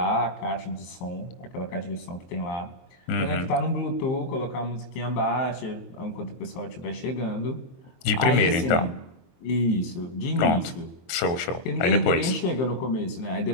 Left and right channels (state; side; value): late; right; 23 ms